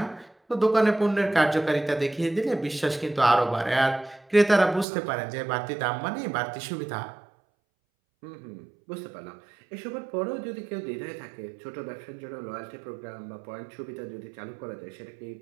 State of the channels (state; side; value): drops out; left; at 4.9 s